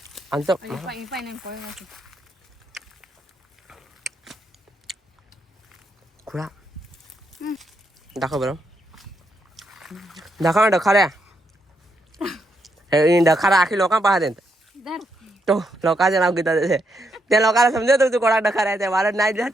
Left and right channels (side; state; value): both; normal; correlation 0.79